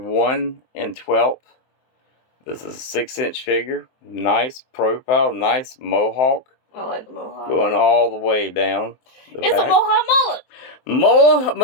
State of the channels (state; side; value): late; right; 23 ms